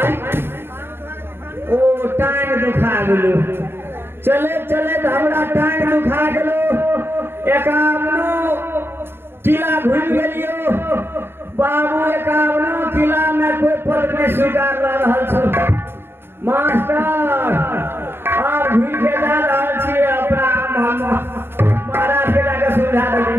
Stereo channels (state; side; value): late; left; 0.11 ms